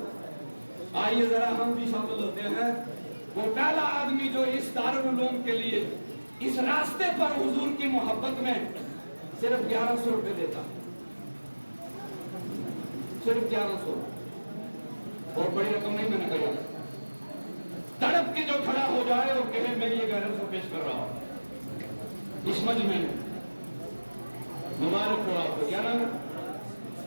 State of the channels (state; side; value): inverted; both; correlation -1.00